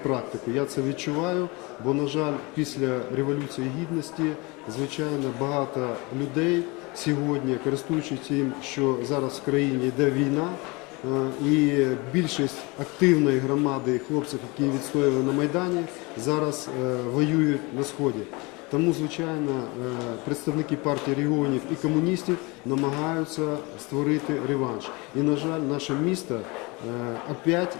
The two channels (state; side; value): quieter; right; 26.3 dB